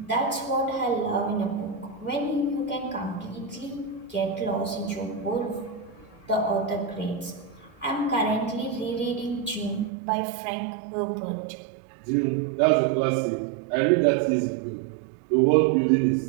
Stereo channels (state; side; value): drops out; left; at 9.9 s